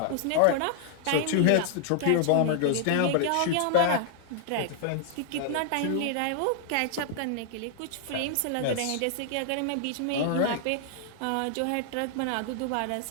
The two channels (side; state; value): both; different; correlation 0.00